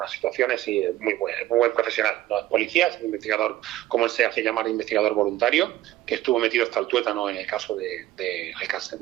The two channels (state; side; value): quieter; left; 15.0 dB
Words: situaciones y es muy buen profesional. No es policía, es un investigador, como él se hace llamar, investigador voluntario, que estuvo metido hasta el tuétano en el caso de Alcácer,